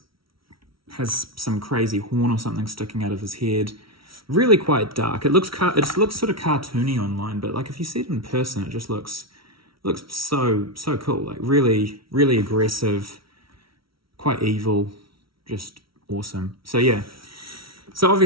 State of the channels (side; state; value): left; late; 0.75 ms